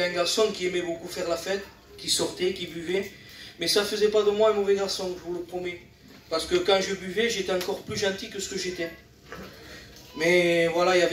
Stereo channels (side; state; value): both; identical; correlation 1.00